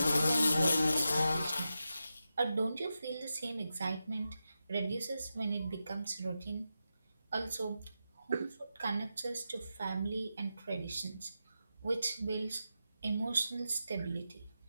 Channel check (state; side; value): inverted; both; correlation -0.90